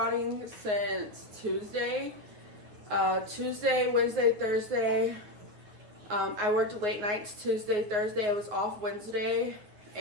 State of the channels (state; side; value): late; left; 9.5 ms